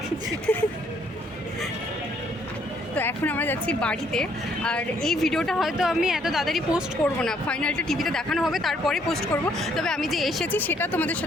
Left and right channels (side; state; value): both; normal; correlation 0.67